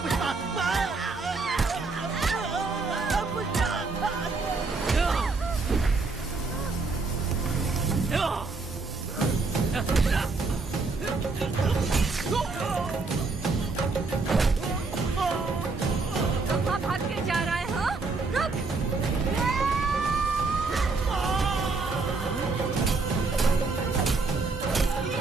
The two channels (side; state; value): left; quieter; 3.9 dB